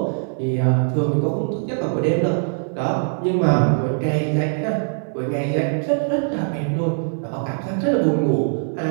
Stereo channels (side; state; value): left; silent; digital silence